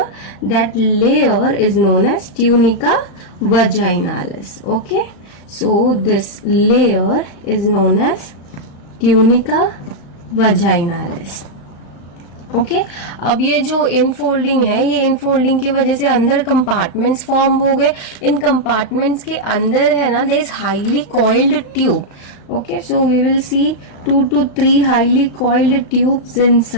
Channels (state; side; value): late; right; 35 ms